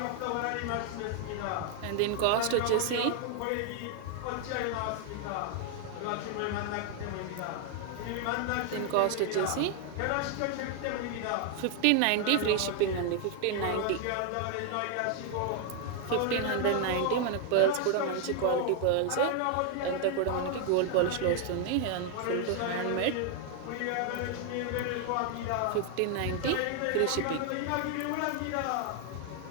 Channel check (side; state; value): both; different; correlation 0.00